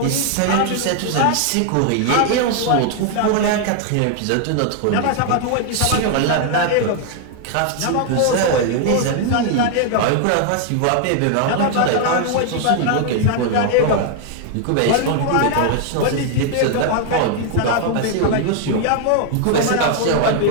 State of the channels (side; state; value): both; different; correlation 0.00